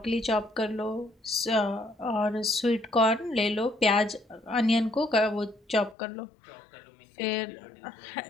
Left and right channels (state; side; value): drops out; right; at 6.0 s